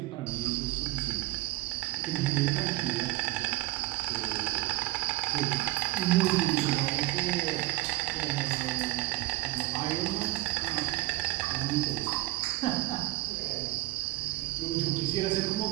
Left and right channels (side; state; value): left; quieter; 18.5 dB